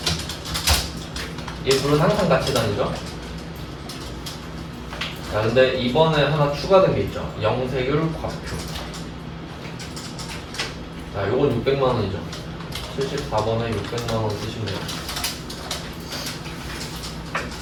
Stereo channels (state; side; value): identical; both; correlation 1.00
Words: 얘 둘은 항상 같이 다니죠. 자, 근데 이번에 하나 추가된 게 있죠. 영세율 과표. 자, 요건 600만 원이죠. 74번에 600만 원 쓰시면 돼요.